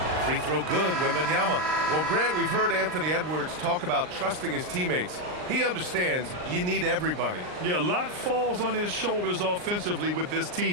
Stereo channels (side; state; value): left; late; 39 ms